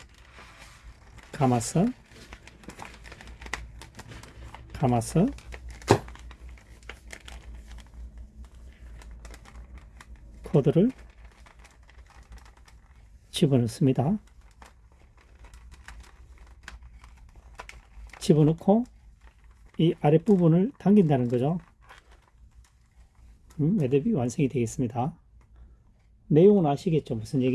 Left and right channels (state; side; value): identical; both; correlation 1.00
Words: 감아서 코드를 집어넣습니다. 집어넣고 이 아랫부분을 당긴다는 거죠. 매듭이 완성이 되겠습니다. 내용은 아시겠죠? 무슨